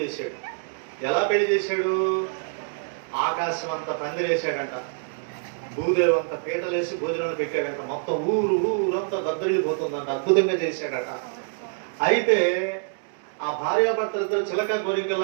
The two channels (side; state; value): left; silent; digital silence